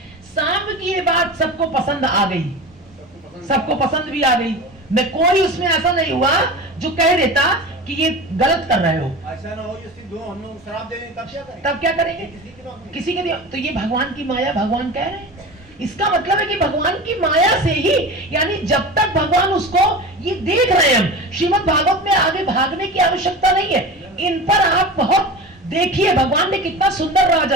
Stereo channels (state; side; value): normal; both; correlation 0.31